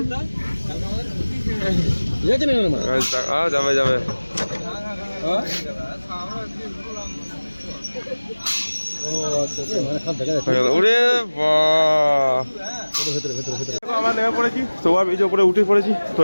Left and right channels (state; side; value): inverted; both; correlation -1.00